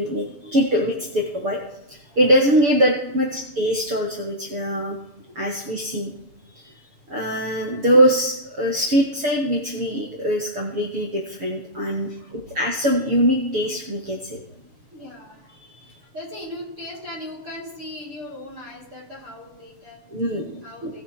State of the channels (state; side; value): late; left; 6.9 ms